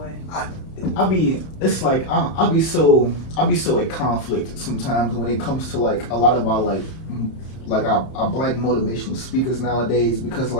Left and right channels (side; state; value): right; late; 31 ms